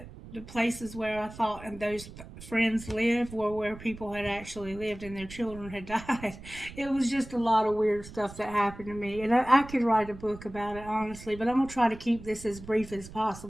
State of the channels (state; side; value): noise; right; rumble, 15 dB below the sound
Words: the places where I thought and those friends lived were where people had actually lived and their children had died. It was just a lot of weird stuff that happened to me. And I could write a book about it, honestly, but I'm going to try to keep this as brief as